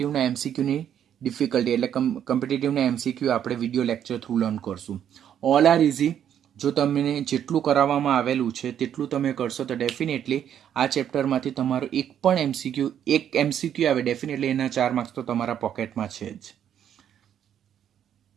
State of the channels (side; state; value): left; quieter; 9.6 dB